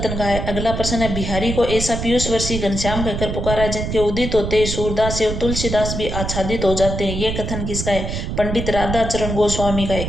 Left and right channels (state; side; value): noise; right; rumble, 4 dB below the sound